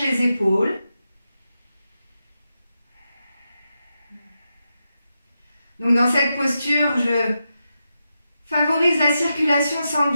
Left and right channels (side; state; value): both; inverted; correlation -0.88